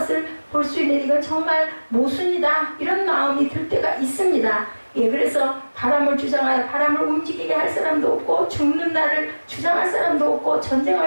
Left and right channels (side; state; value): both; inverted; correlation -1.00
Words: 볼 수 있는, 이건 정말 모순이다, 이런 마음이 들 때가 있습니다. 그래서 바람을 주장하여 바람을 움직이게 할 사람도 없고, 죽는 날을 주장할 사람도 없고,